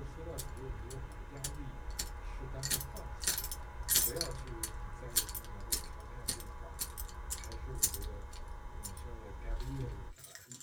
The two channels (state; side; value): identical; both; correlation 1.00